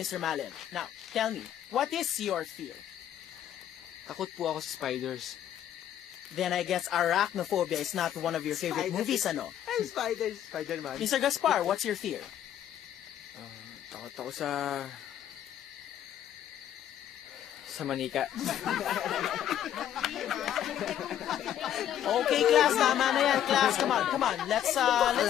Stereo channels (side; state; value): right; quieter; 10.7 dB